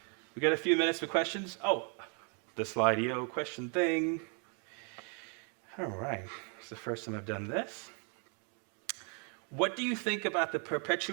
We got a few minutes for questions. Oh, the Slido question thing. All right. It's the first time I've done this. What do you think about the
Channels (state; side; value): quieter; left; 38.6 dB